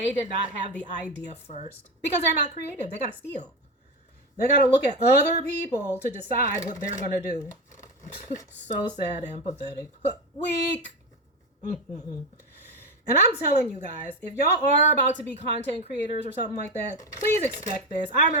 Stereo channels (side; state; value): both; normal; correlation 0.17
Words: did not have the idea first. Because they're not creative. They got to steal. They got to look at other people to decide what they're going to do. So sad and pathetic. Weak. And I'm telling you guys, if y'all are about to be content creators or something like that, please expect this. I